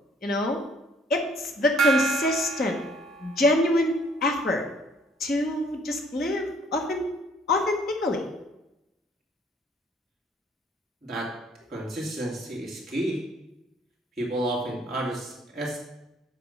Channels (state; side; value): normal; both; correlation 0.61